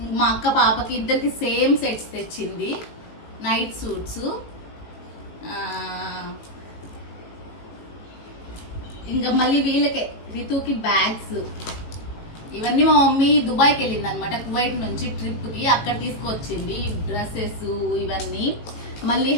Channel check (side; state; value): right; late; 19 ms